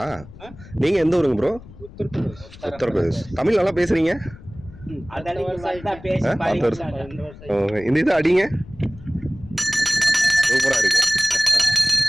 நீங்கள் எந்த ஊருங்க ப்ரோ? உத்தரப்பிரதேஷ். தமிழ் நல்லா பேசுகிறீங்க. இந்த இது அடிங்க, சூப்பராக இருக்கு.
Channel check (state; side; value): noise; left; rumble, 18 dB below the sound